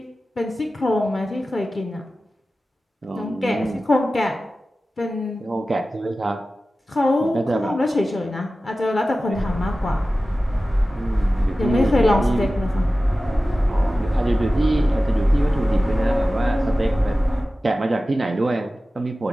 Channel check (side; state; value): both; normal; correlation 0.95